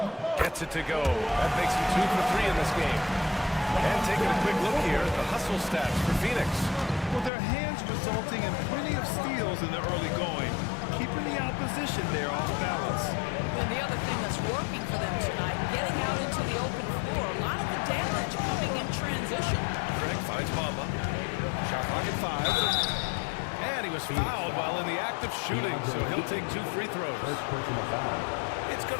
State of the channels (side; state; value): right; drops out; at 7.3 s